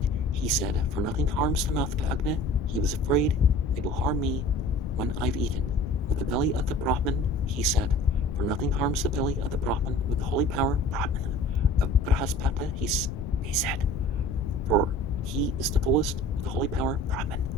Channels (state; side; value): noise; left; rumble, 7 dB below the sound